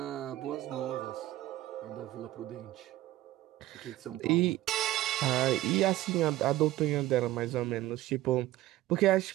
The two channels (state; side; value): quieter; left; 15.4 dB